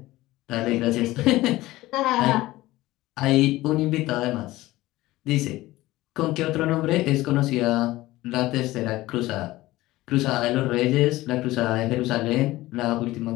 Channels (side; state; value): right; quieter; 17.8 dB